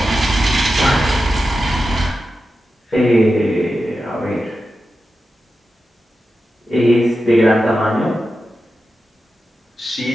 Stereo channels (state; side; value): normal; both; correlation 0.91